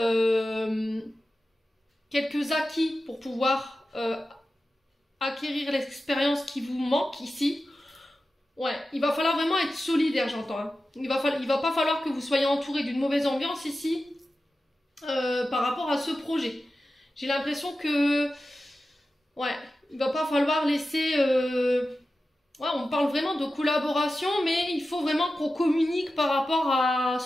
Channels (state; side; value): normal; both; correlation 0.93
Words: acquis pour pouvoir acquérir l'expérience qui vous manque ici. Ouais, il va falloir vraiment être solidaire, j'entends. Hein. Il va pas falloir que vous soyez entouré d'une mauvaise ambiance ici par rapport à ce projet. J'ai l'impression que Ouais, il va pas falloir laisser... Ouais, on parle vraiment de collaboration, mais il faut vraiment qu'on communique par rapport à